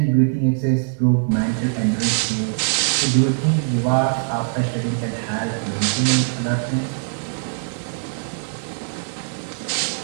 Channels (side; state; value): left; silent; digital silence